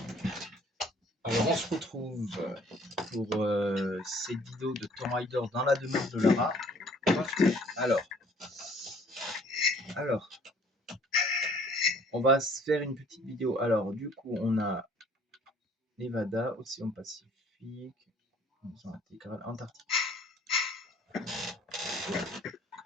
Alors on se retrouve pour cette vidéo de Tomb Raider dans la demeure de Lara. Alors, on va se faire une petite vidéo. Alors du coup on a Nevada, Océan Pacifique, intégrale Antarctique.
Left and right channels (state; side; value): normal; both; correlation 0.57